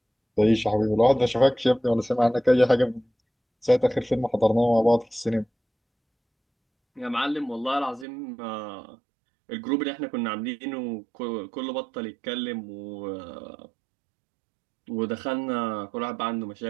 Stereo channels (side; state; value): left; drops out; at 8.1 s